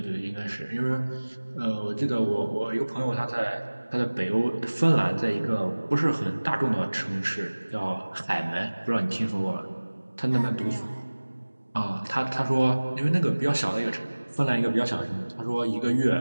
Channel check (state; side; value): inverted; both; correlation -1.00